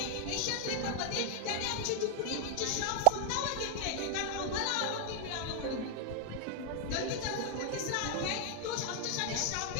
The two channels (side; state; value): both; different; correlation 0.00